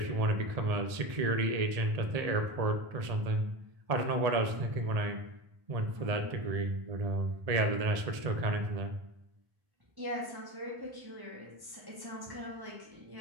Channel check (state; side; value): late; left; 1.7 ms